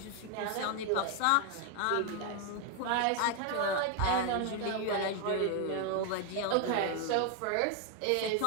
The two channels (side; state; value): both; different; correlation 0.01